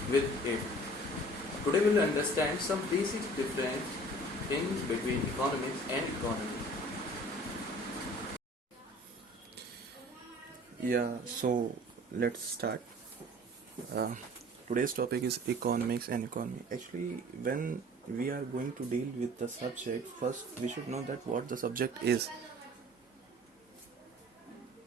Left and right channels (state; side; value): normal; both; correlation 0.48